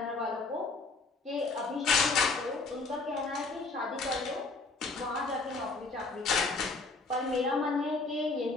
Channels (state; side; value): quieter; right; 3.7 dB